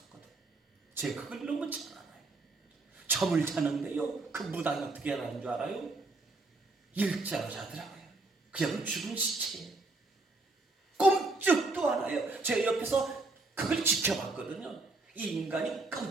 제가 그걸 너무 잘 알아요. 잠을 자는데요, 그 무당이 어떻게 하는 줄 알아요? 일자로 자더라고요. 그냥 죽은 시체예요. 꼼짝도 안 해요. 제가 옆에서 그걸 지켜봤거든요. 이 인간이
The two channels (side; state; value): left; quieter; 3.2 dB